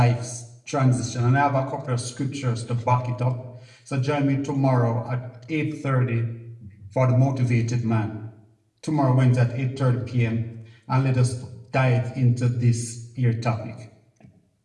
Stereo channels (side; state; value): both; identical; correlation 1.00